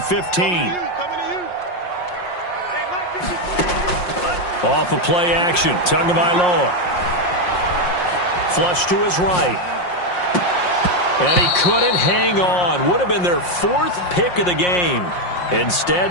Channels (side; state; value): right; late; 5.6 ms